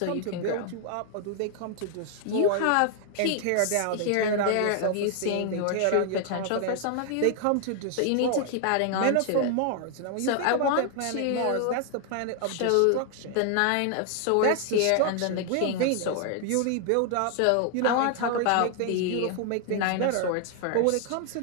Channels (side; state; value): both; different; correlation 0.00